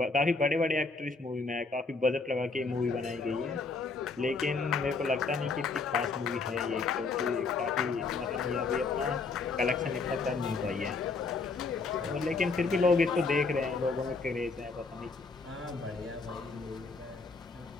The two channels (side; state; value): right; quieter; 4.1 dB